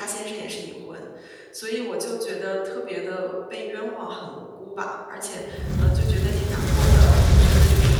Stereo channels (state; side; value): identical; both; correlation 1.00